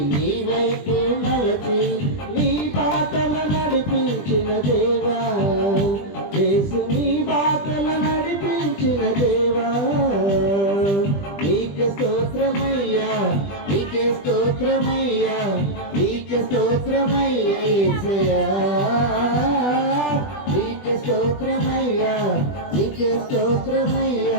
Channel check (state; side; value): late; right; 20 ms